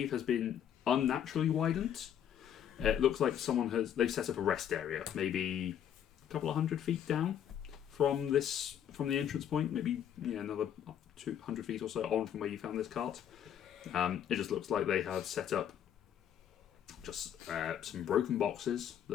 has been unnaturally widened. It looks like they've set up a rest area, maybe a couple of 100 feet down from the entrance point, maybe another 200 feet or so on from where you found this cart. It just looks like they have set up just some broken boxes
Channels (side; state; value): right; quieter; 9.5 dB